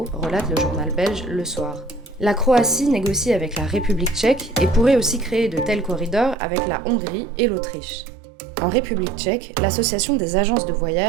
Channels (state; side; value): drops out; left; at 6.4 s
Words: relate le journal belge Le Soir. La Croatie négocie avec la République tchèque et pourrait aussi créer de tels corridors avec la Hongrie et l'Autriche. En République tchèque, l'association des agences de